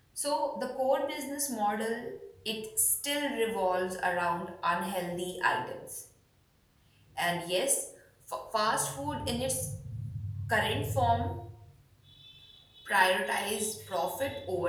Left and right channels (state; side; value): identical; both; correlation 1.00